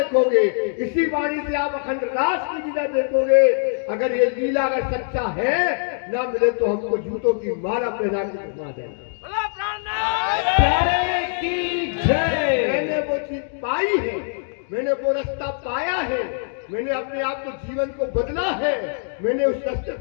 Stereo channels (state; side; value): silent; right; digital silence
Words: इसी वाणी से आप अखंड रास की लीला देखोगे। अगर ये लीला अगर सच्चा है, ना मिले तो हमको जूतों की माला पहना के घुमा देना। प्यारे की जय। मैंने वो चीज पाई है, मैंने वो रास्ता पाया है, मैंने अपने आप को जीवन को बदला है, मैंने उस रास्ते